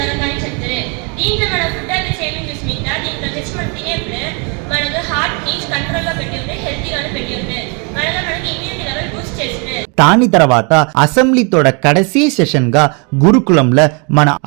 చెప్తారు. దీంట్లో మన ఫుడ్ హ్యాబిట్స్ ఏమేమి చూసిమింట దీంట్లో తెచ్చి మనం తినేప్పుడు మనకు హార్ట్ని కంట్రోల్లో పెట్టి ఉంటే, హెల్తీగానే పెట్టి ఉంటే, మనకి ఇమ్యూనిటీ లెవెల్ బూస్ట్ చేస్తుంది. దాని తర్వాత అసెంబ్లీతోడ కడసీ సెషన్ గా గురుకులంలో మన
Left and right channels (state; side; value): quieter; left; 34.4 dB